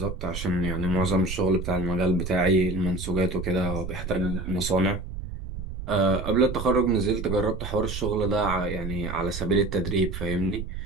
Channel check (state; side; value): noise; right; rumble, 7 dB below the sound